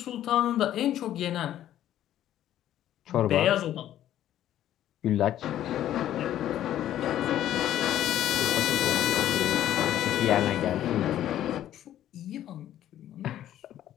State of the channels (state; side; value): quieter; right; 12.0 dB